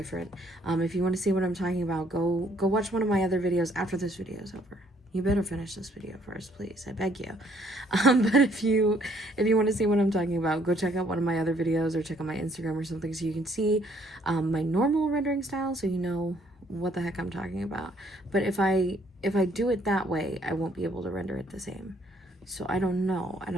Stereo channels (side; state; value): both; normal; correlation 0.65